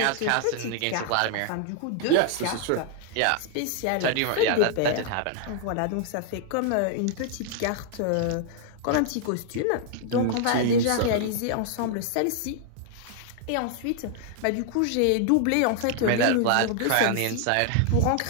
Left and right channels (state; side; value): different; both; correlation 0.00